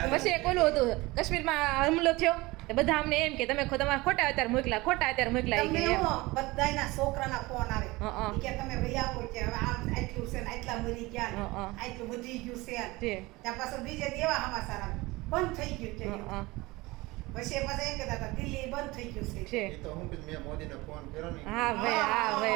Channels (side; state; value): left; quieter; 21.7 dB